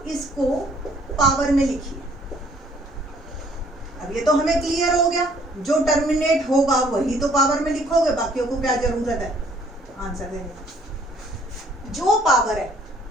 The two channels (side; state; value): both; normal; correlation 0.61